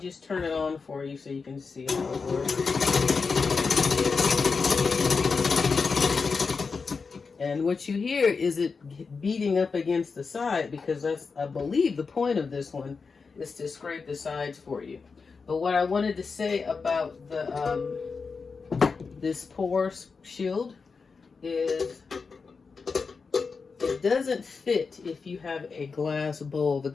turn it on for you so you can see how it works. And what you hear is it beating up against the side, because that's, I believe, the point of this one is to scrape the sides for you. But what I wanted to say about the this pour shield is it doesn't fit if you have a glass bowl. The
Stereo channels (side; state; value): right; quieter; 4.9 dB